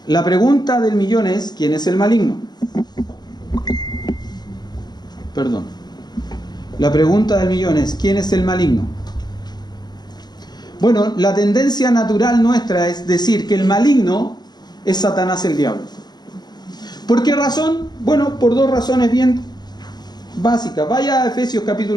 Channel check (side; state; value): right; late; 0.20 ms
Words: La pregunta del millón es, ¿quién es el maligno? Perdón. La pregunta del millón es, ¿quién es el maligno? Bueno, la tendencia natural nuestra es decir que el maligno es Satanás el diablo. ¿Por qué razón? Bueno, por dos razones bien básicas. Vaya a Efesios